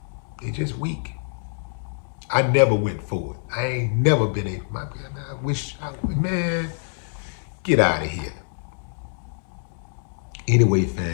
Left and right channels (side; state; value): right; silent; digital silence